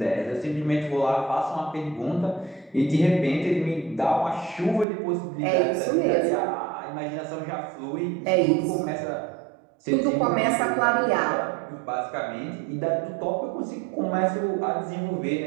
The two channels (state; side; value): drops out; left; at 4.9 s